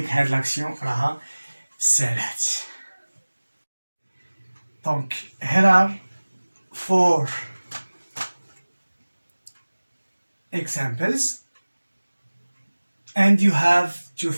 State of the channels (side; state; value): both; inverted; correlation -1.00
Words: هاد لاكسيون راها سالات. دونك here are 4 examples and you have to